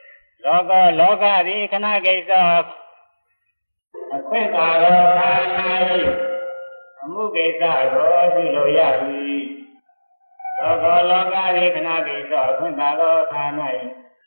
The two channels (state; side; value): inverted; both; correlation -1.00